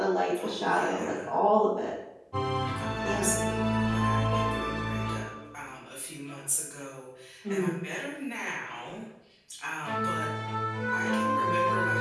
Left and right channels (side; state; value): both; identical; correlation 1.00